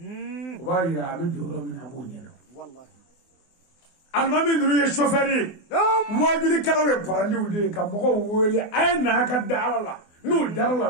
وبايرا بجورو من أبو نيلو والله المامي نروي الشوفيري واجري كلاوي براندي ودي كمغو ولي أين هكذا على الله نو دار الله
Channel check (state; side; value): late; right; 24 ms